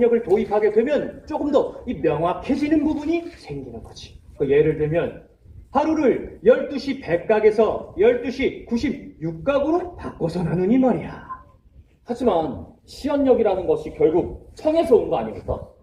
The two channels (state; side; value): identical; both; correlation 1.00